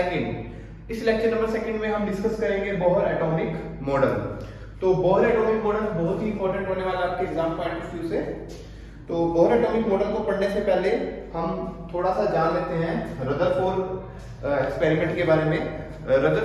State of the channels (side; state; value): both; identical; correlation 1.00